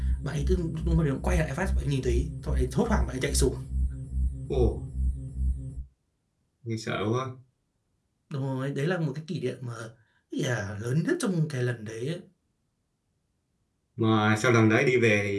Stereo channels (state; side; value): identical; both; correlation 1.00